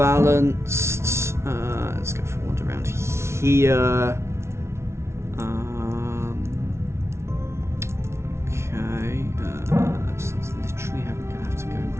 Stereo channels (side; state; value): left; late; 0.13 ms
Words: Let's go for one around here. Okay, so it's literally going to have to go